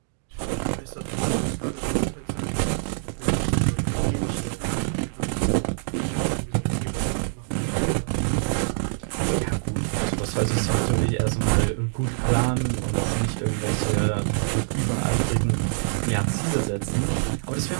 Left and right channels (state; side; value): silent; left; digital silence